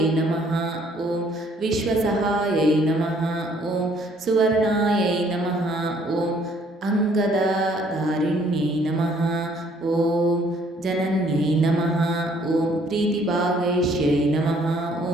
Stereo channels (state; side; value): normal; both; correlation 0.62